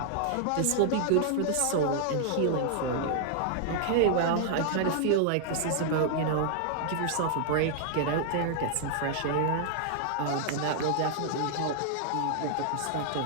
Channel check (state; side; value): different; both; correlation 0.00